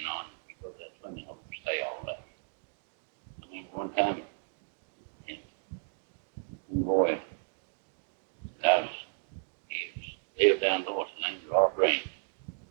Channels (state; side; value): silent; left; digital silence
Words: know, and we go to that swimming hole and stay all day. I remember one time, one boy, he lived down north, his name was Rob Green.